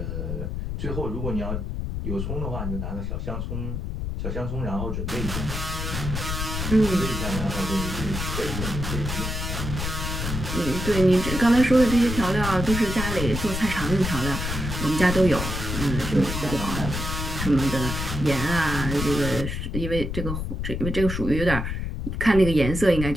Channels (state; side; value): noise; left; rumble, 3 dB below the sound